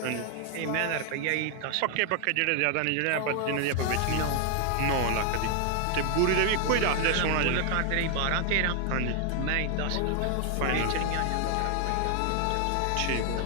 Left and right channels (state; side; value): different; both; correlation 0.00